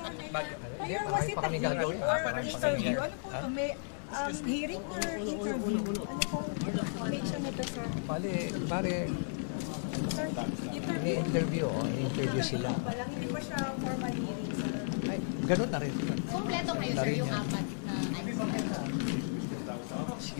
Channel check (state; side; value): silent; right; digital silence